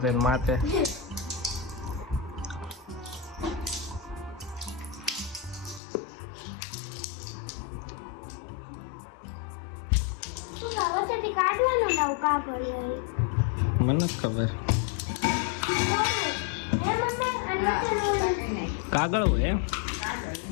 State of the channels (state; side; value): drops out; right; at 5.8 s